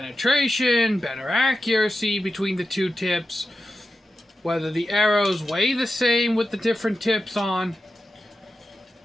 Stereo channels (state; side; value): normal; both; correlation 0.91